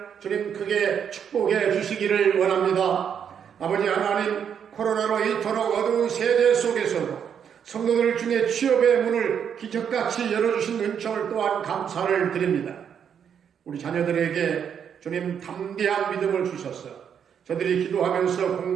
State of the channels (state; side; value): quieter; left; 8.0 dB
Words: 주님 크게 축복해 주시기를 원합니다. 아버지 하나님, 코로나로 이토록 어두운 세대 속에서도 성도들 중에 취업의 문을 기적같이 열어주신 은총을 또한 감사를 드립니다. 우리 자녀들에게 주님 담대한 믿음을 주셔서 저들이 기도하면서